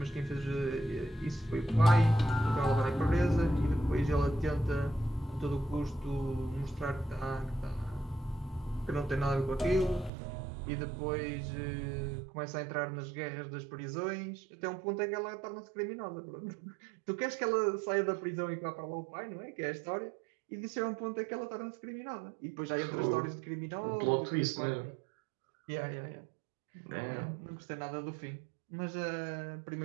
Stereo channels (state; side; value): drops out; left; at 10.1 s